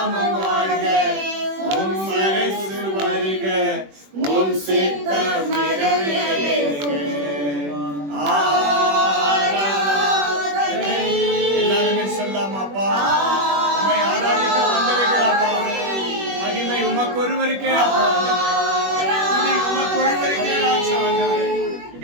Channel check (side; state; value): left; late; 21 ms